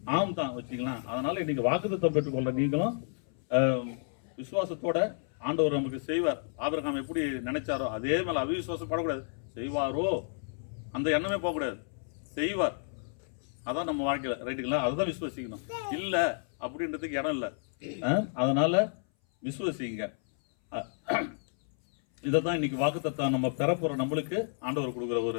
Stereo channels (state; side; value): silent; right; 57 dB below the other